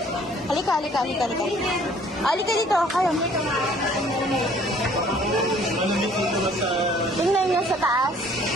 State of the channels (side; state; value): both; normal; correlation 0.57